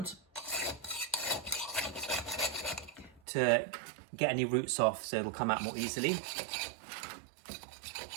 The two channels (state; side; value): drops out; left; at 3.2 s